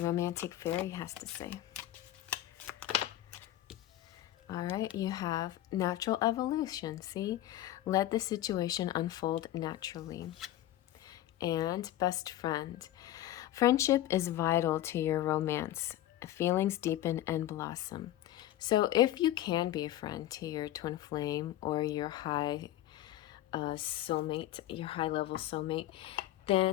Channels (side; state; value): right; quieter; 13.8 dB